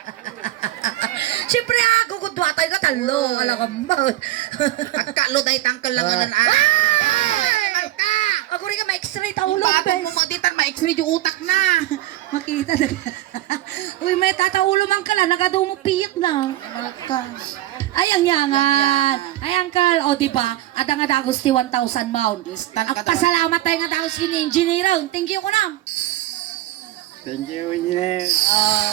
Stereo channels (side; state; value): left; quieter; 15.4 dB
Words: Siyempre ako kung duwatay ka talo. Alam ka mo. Pagkalo dahil tangkal lang anan Ako rin ka ma-x-ray taulog. Bakit mo maditan ma-x-ray yung utak na. Makita na. Uy, may tataulo man ka lang. Nagado mo piyak na. Ay, ang yangan. Ay, angkal. O, diba? Ada nga dagos ti 1,000 pound. Instant ka daw. Pasalamat tayo nga dagos kini engineer. Thank you ko na. Thank you, engineer. Oh,